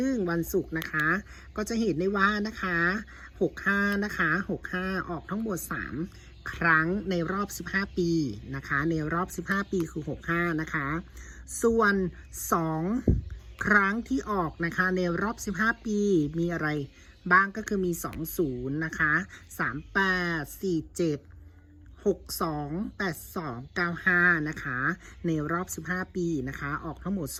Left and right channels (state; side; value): identical; both; correlation 1.00